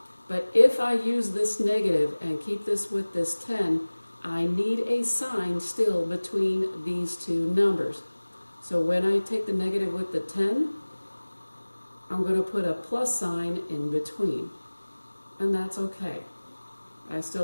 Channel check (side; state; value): both; inverted; correlation -1.00